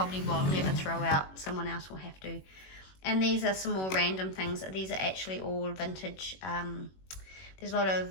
will never throw out. Someone else will have to. And these are some more random things. These are actually all vintage. There's a lot of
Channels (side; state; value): right; late; 21 ms